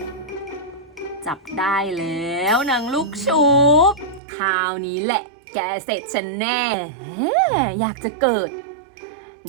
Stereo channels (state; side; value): drops out; left; at 4.2 s